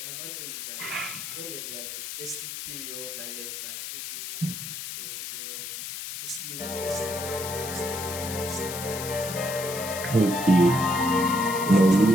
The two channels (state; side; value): noise; left; hiss, 7 dB below the sound